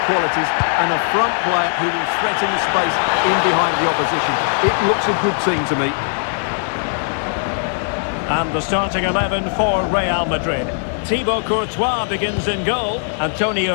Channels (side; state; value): right; silent; 59 dB below the other